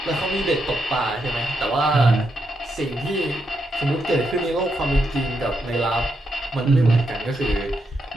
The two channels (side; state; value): both; normal; correlation 0.82